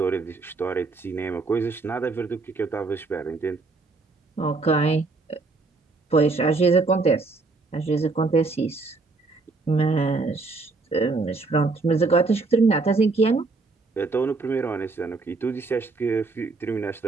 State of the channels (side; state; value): left; quieter; 3.8 dB